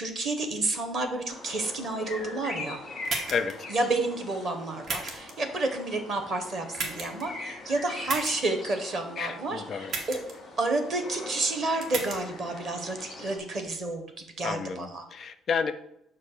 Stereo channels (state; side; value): normal; both; correlation 0.68